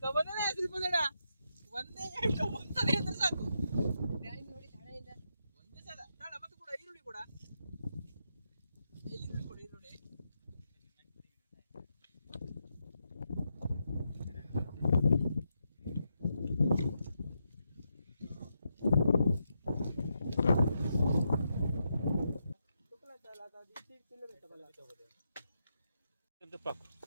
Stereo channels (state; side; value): inverted; both; correlation -0.83